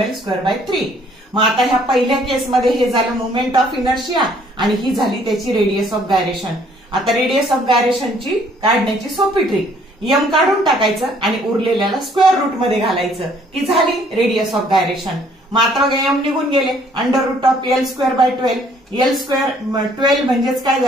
मग आता ह्या पहिल्या केसमध्ये हे झालं मुवमेंट ऑफ इनर्शिया आणि ही झाली त्याची रेडियस ऑफ गायरेशन। आता रेडियस ऑफ गायरेशनची काढण्याची सोपी ट्रिक, एम काढून टाकायचं आणि उरलेल्याला स्क्वेअर रूट मध्ये घालायचं की झाली रेडियस ऑफ गायरेशन। मात्र एम निघून गेले, √L²/12, L²12 म्हणजेच काय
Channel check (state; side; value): normal; both; correlation 0.62